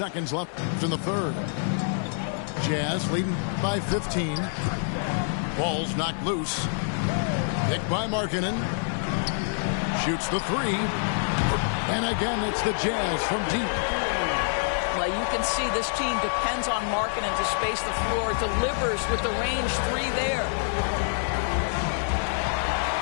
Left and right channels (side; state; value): right; silent; digital silence